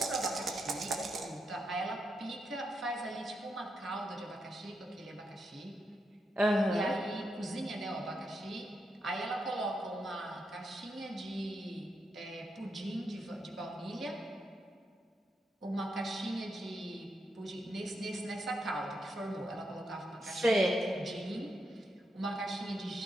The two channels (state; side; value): normal; both; correlation 0.83